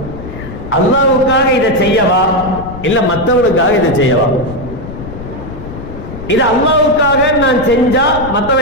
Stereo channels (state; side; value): noise; left; rumble, 11 dB below the sound